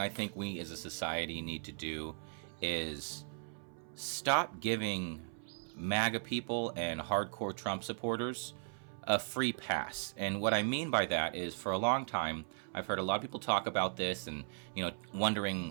I think we as a society need to do is stop giving MAGA people and hardcore Trump supporters a free pass. And what I mean by that is, for a long time, I've heard a lot of people talk about this and, wondering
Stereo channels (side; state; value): left; silent; 53 dB below the other